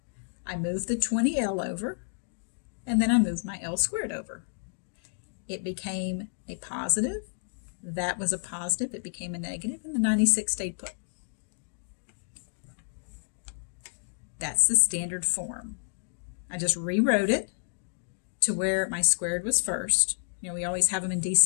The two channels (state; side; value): silent; right; digital silence